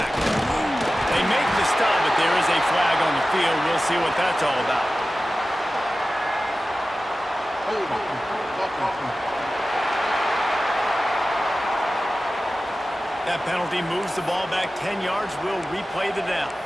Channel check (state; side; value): normal; both; correlation 0.95